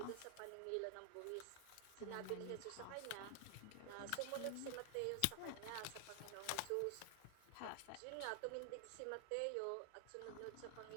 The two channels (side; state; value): both; different; correlation 0.00